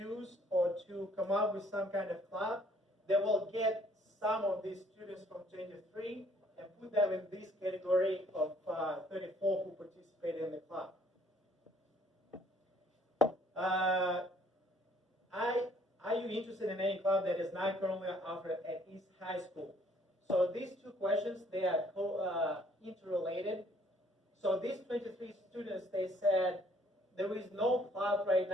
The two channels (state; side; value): normal; both; correlation 0.61